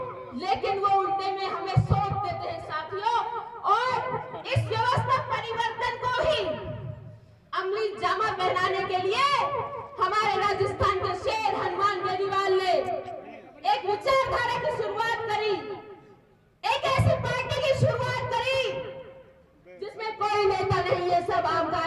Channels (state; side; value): identical; both; correlation 1.00